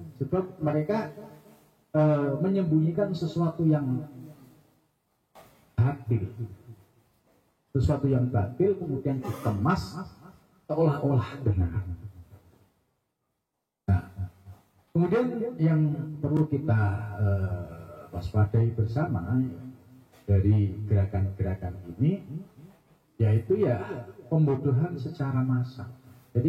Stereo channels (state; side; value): identical; both; correlation 1.00